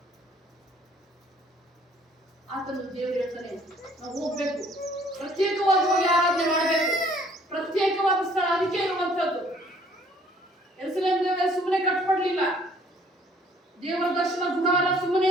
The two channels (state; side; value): normal; both; correlation 0.59